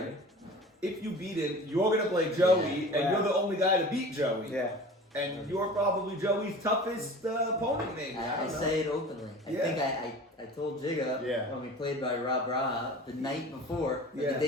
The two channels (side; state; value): both; normal; correlation 0.39